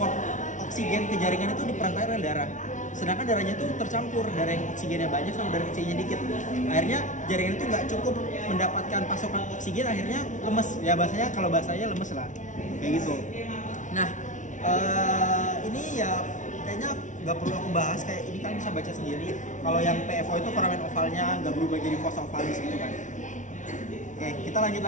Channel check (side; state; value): right; late; 0.37 ms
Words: oksigen ke jaringan itu diperantai oleh darah. Sedangkan darahnya itu tercampur, darah yang oksigennya banyak sama darah oksigennya dikit. Akhirnya jaringan itu nggak cukup mendapatkan pasokan oksigen, akhirnya lemes. Ya kalau bahasanya lemes lah, kayak gitu. Nah ini ya kayaknya nggak perlu aku bahas, kayak ini kan bisa baca sendiri. Kalau yang PFO itu foramen ovalnya nggak berubah jadi fossa ovalis gitu kan. Oke, kita lanjut